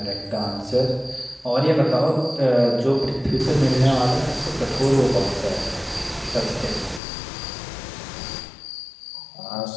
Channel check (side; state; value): right; drops out; at 7.0 s